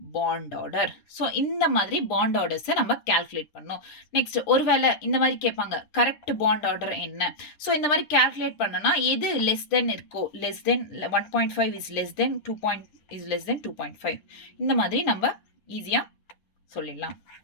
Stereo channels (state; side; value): late; right; 10 ms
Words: bond order. So இந்த மாதிரி பாண்ட் ஆர்டர்ஸை நம்ம கால்குலேட் பண்ணோம். நெக்ஸ்ட் ஒருவேளை இந்த மாதிரி கேட்பாங்க, கரெக்ட் பாண்ட் ஆர்டர் என்ன? ஸோ இந்த மாதிரி கால்குலேட் பண்ணனா எது லெஸ் தென் இருக்கோ, less than 1.5 is less than 2.5 இந்த மாதிரி நம்ம ஈஸியா சொல்லிடலாம்.